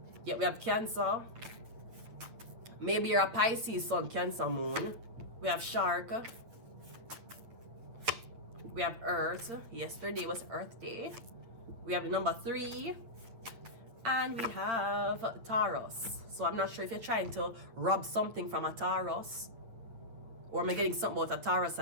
Yeah, we have Cancer. Maybe you're a Pisces Sun, Cancer Moon. We have Shark. We have Earth. Yesterday was Earth Day. We have the number 3. And we have Taurus. So I'm not sure if you're trying to rob something from a Taurus. Or am I getting something about a Taurus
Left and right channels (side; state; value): left; late; 9.0 ms